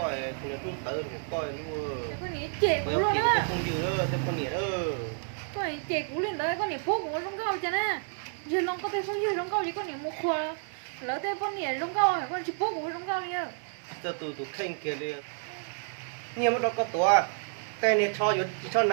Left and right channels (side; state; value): left; silent; 58 dB below the other